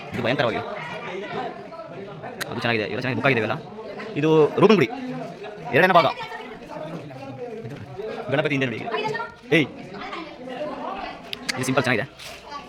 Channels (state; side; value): identical; both; correlation 1.00